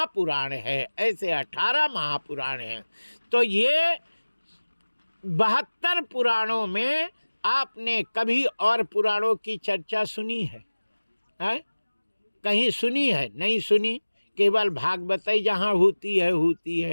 है, ऐसे 18 महापुराण हैं। तो ये 72 पुराणों में आपने कभी और पुराणों की चर्चा सुनी है? कहीं सुनी है? नहीं सुनी। केवल भागवत ही जहाँ होती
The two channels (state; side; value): inverted; both; correlation -1.00